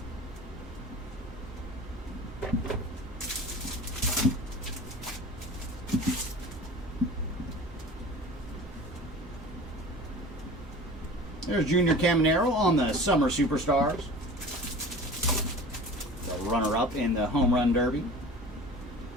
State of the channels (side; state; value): both; normal; correlation 0.39